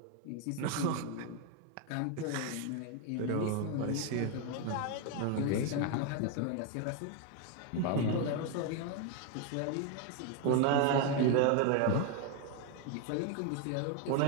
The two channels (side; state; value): both; different; correlation 0.01